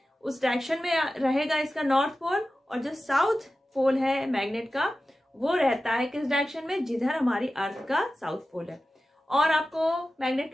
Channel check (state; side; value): normal; both; correlation 0.94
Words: उस डायरेक्शन में रहेगा इसका नॉर्थ पोल। और जो साउथ पोल है मैग्नेट का वो रहता है किस डायरेक्शन में, जिधर हमारी अर्थ का साउथ पोल है। और आपको मैग्नेट